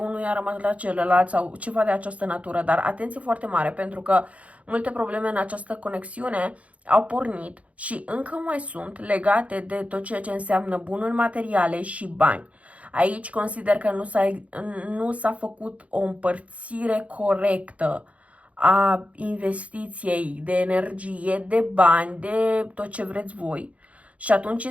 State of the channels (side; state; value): left; late; 0.065 ms